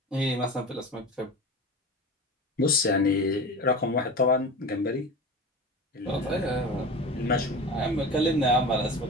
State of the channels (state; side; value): normal; both; correlation 0.31